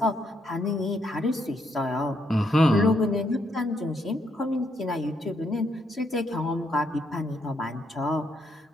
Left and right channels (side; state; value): both; normal; correlation 0.75